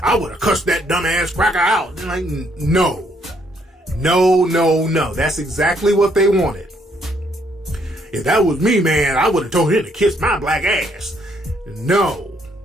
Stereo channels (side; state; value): both; normal; correlation 0.70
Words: I would have cussed that dumbass cracker out. And like, no. That's exactly what they wanted. If that was me, man, I would have told him to kiss my black ass. No.